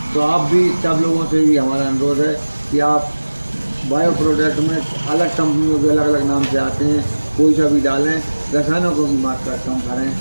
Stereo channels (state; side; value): inverted; both; correlation -1.00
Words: तो आप भी सब लोगों से भी हमारा अनुरोध है कि आप बायो प्रोडक्ट में अलग कंपनियों के अलग अलग नाम से आते हैं, कोई सा भी डालें, रसायनों को भी मात्रा कम करें।